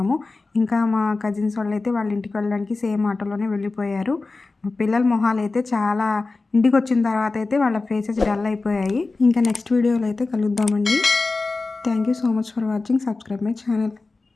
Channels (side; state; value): right; quieter; 3.6 dB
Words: ఇంకా మా కజిన్స్ వాళ్ళు అయితే వాళ్ళ ఇంటికి వెళ్ళడానికి సేమ్ ఆటోలోనే వెళ్ళిపోయారు. పిల్లల మొహాలు అయితే చాలా, ఇంటికి వచ్చిన తర్వాత అయితే వాళ్ళ ఫేసెస్ డల్ అయిపోయాయి. ఇంకా నెక్స్ట్ వీడియోలో అయితే కలుద్దామండి. Thank you so much for watching. Subscribe my channel.